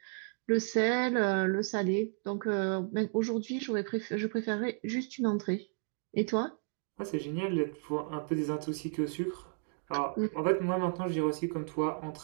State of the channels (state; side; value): silent; left; 56 dB below the other